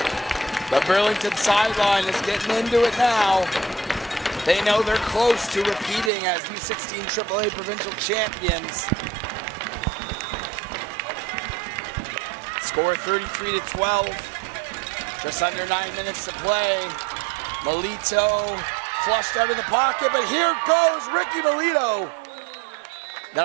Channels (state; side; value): drops out; left; at 6.1 s